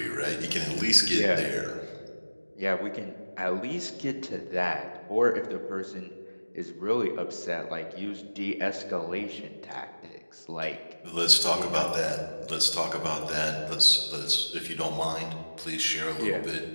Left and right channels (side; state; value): both; inverted; correlation -1.00